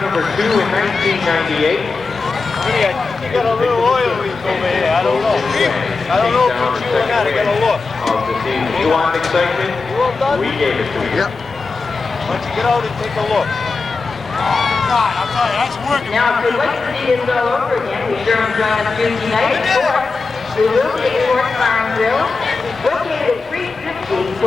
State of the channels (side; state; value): right; quieter; 4.1 dB